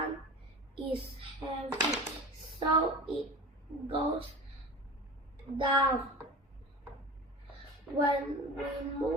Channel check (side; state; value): both; normal; correlation 0.35